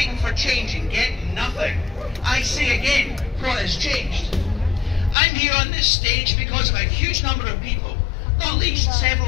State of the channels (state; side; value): drops out; right; at 5.2 s